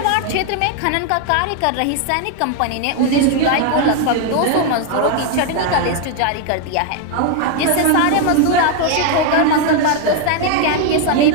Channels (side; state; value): both; different; correlation 0.00